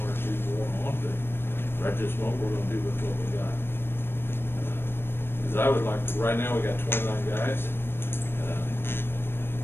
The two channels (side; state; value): right; late; 0.11 ms